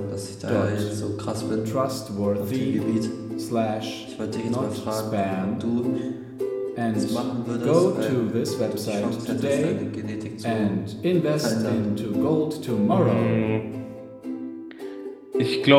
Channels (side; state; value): both; identical; correlation 1.00